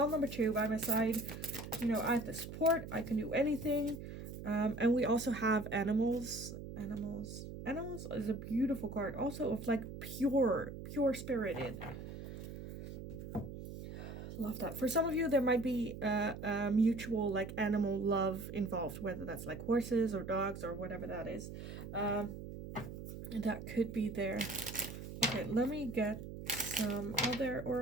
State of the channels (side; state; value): right; noise; hum, 10 dB below the sound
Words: number 2 by my side, you know, I have the support. I can do anything. And we also have animals. Animals is a beautiful card. Also of like pure spirited. Love that. For some of you, there might be a mutual like animal love involved, whether that's like horses or dogs or whatever that is. That could be there. Okay, let me get some other